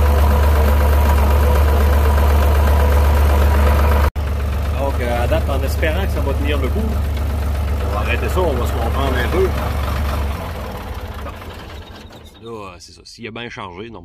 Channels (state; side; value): identical; both; correlation 1.00